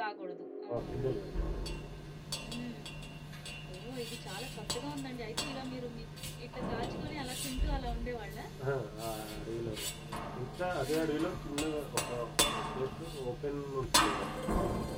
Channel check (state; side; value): identical; both; correlation 1.00